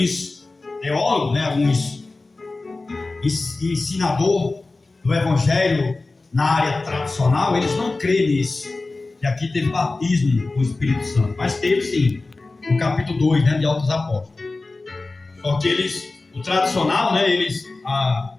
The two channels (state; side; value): quieter; right; 3.4 dB